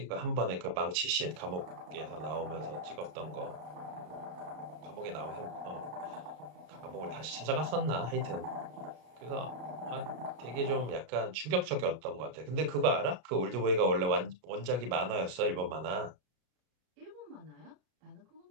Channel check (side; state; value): left; late; 33 ms